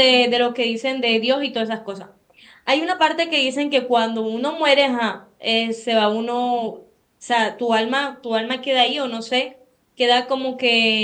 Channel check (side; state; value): both; identical; correlation 1.00